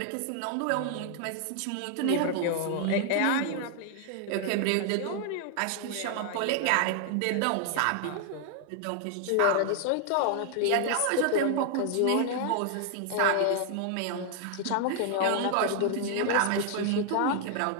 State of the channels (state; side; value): different; both; correlation 0.00